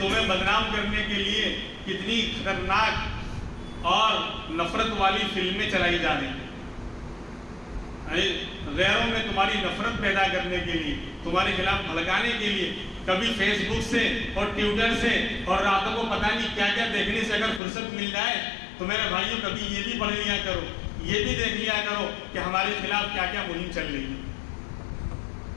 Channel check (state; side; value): drops out; right; at 17.6 s